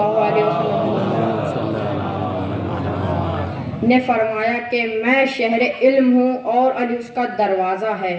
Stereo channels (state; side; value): identical; both; correlation 1.00